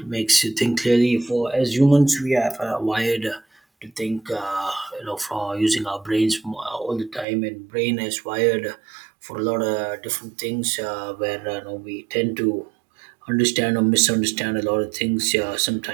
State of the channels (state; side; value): drops out; left; at 7.2 s